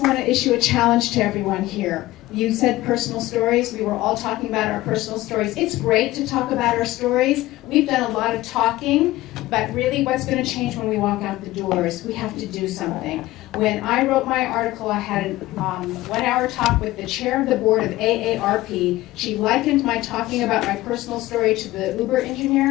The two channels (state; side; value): quieter; right; 17.2 dB